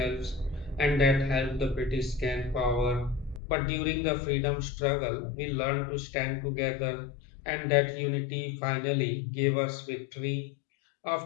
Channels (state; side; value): drops out; right; at 3.4 s